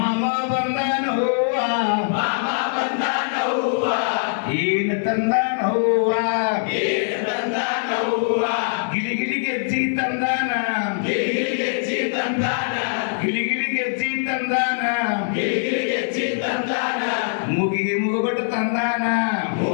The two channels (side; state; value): right; silent; 56 dB below the other